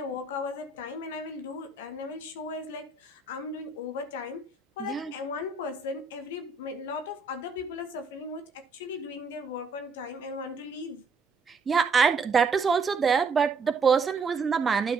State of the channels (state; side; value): quieter; left; 4.1 dB